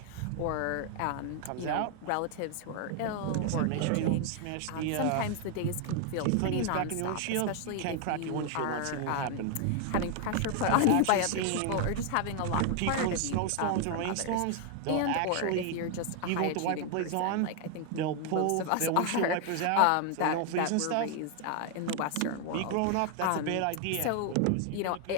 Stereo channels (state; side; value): different; both; correlation 0.00